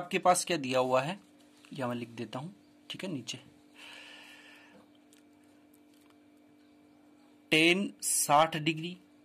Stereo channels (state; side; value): identical; both; correlation 1.00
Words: पास क्या दिया हुआ है, यह मैं लिख देता हूं। ठीक है, नीचे tan 60 degree